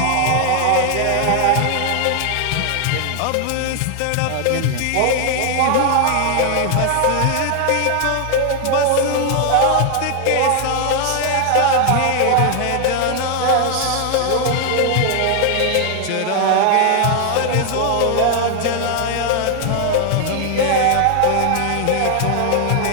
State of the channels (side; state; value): both; different; correlation 0.00